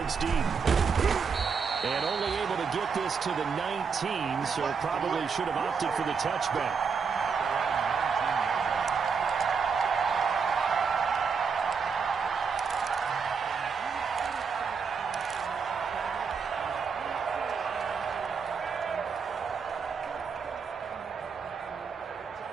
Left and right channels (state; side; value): quieter; left; 5.8 dB